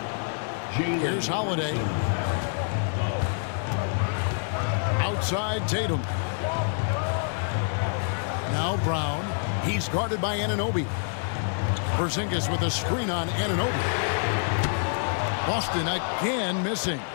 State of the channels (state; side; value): silent; right; 60 dB below the other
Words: Jalen. Here's Holiday. Outside Tatum. Now Brown. He's guarded by Anunoby. Porzingis with a screen on Anunoby. Boston again missing.